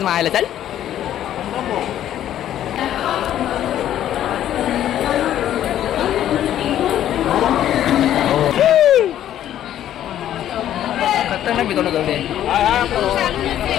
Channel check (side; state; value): right; quieter; 11.5 dB